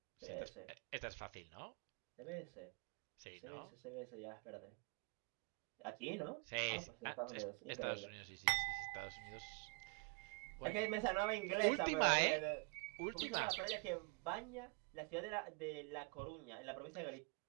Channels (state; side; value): quieter; left; 33.2 dB